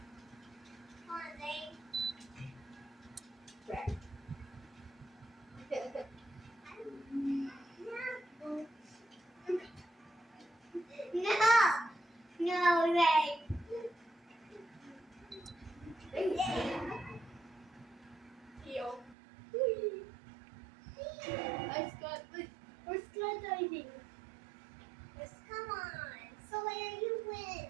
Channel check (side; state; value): left; drops out; at 19.2 s